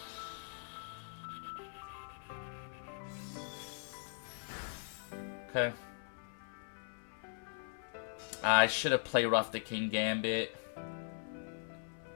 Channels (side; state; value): right; silent; 51 dB below the other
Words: Okay. I should have Play Rough the King Gambit.